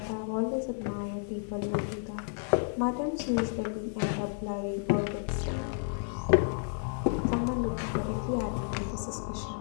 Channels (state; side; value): silent; right; digital silence